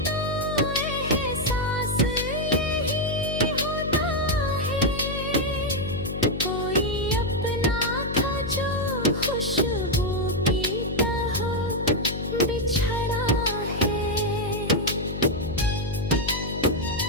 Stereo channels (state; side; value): noise; left; hum, 6 dB below the sound